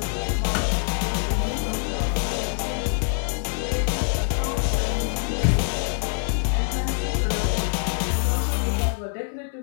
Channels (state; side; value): silent; right; digital silence